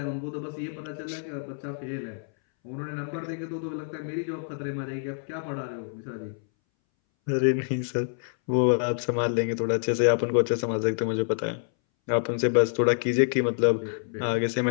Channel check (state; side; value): silent; right; 60 dB below the other